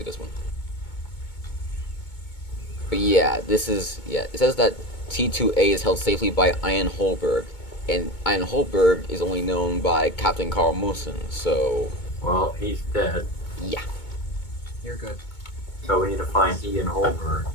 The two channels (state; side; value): late; right; 2.2 ms